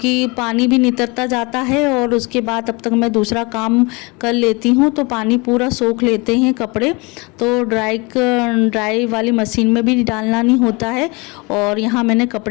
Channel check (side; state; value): right; quieter; 27.4 dB